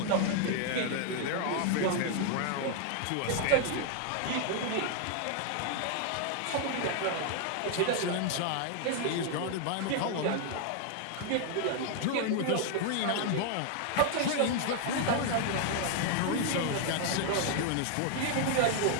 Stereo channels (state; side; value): different; both; correlation 0.00